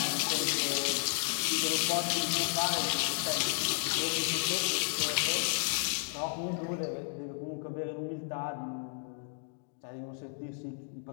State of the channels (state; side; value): silent; right; digital silence